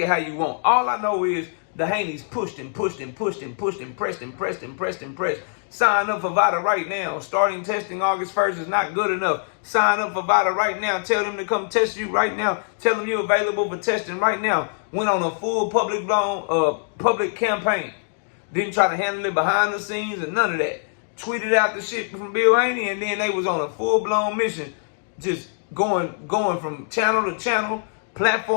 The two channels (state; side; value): silent; right; digital silence